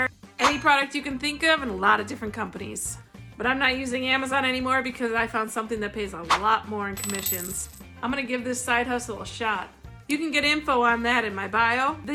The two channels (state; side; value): identical; both; correlation 1.00